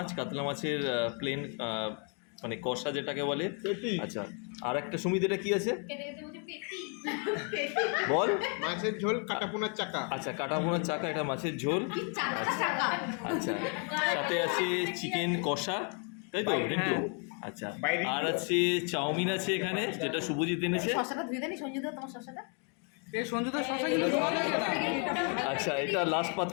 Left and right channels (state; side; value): quieter; right; 39.1 dB